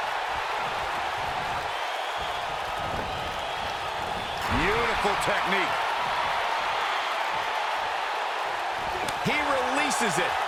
Beautiful technique. He releases it.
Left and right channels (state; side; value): identical; both; correlation 1.00